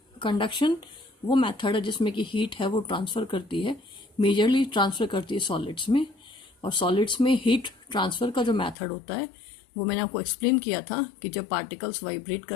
कंडक्शन वो मेथड है जिसमें कि हीट है वो ट्रांसफ़र करती है, मेजरली ट्रांसफ़र करती है सॉलिड्स में. और सॉलिड्स में हीट ट्रांसफ़र का जो मेथड होता है वो मैंने आपको एक्सप्लेन किया था कि जब पार्टिकल्स वाइब्रेट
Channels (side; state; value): right; drops out; at 8.8 s